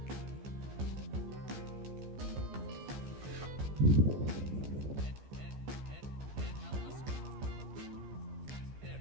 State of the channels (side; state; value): left; late; 15 ms